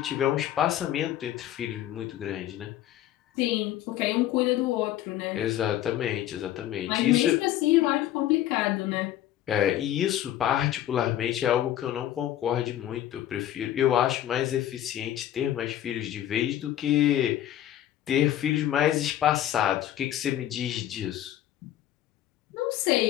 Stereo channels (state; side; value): quieter; right; 12.4 dB